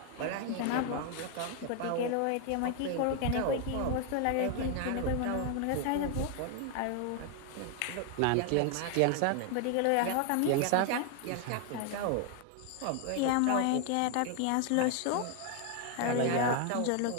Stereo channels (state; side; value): different; both; correlation 0.00